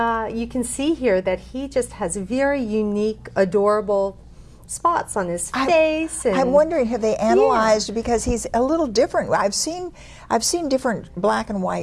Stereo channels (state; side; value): identical; both; correlation 1.00